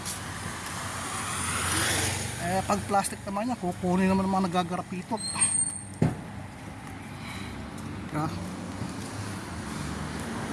Pag plastic naman niya, kukunin naman ng mga nagagarapitot. Kaya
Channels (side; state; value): both; identical; correlation 1.00